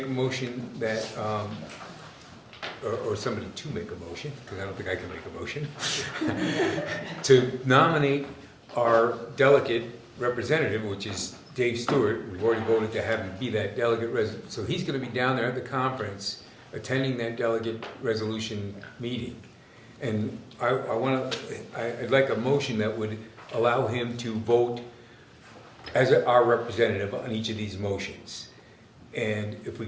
a motion that, or somebody to make a motion, because I don't think I can make a motion, to nominate our delegate representative, which is Dave Stewart. We've already voted to have him be that delegate so he's going to be down there at the conference, attending that delegate resolution meeting. And I'd like a motion that would allow him to vote as our representative on each of these motions. And if we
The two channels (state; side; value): identical; both; correlation 1.00